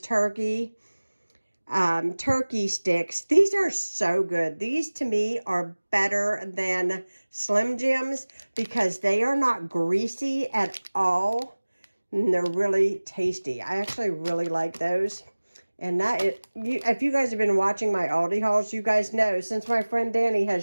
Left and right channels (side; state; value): both; inverted; correlation -1.00